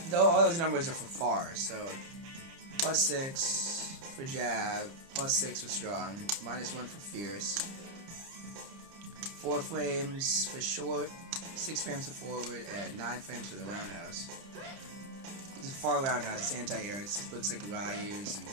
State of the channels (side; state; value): left; late; 30 ms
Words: All those numbers are for far. So +6 for jab, +6 for strong, -1 for fierce. 4 frames for short, 6 frames for forward, and 9 frames for the roundhouse. It's a far roundhouse. It's anti-air. It looks like Ryu's and